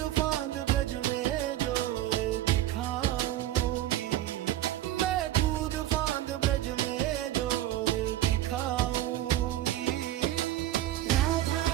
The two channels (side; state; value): left; quieter; 13.7 dB